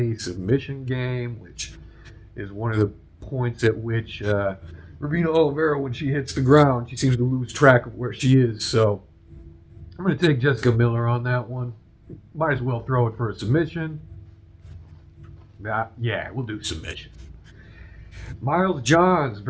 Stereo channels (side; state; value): both; identical; correlation 1.00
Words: submission game, which is one of the points at which Ravina Oliveira, when she hits the ground, she seems to lose track of where she is. So I'm going to take Jessica Miller on that one. Might as well throw it for a submission. Yeah, we'll do submission. Miles Johns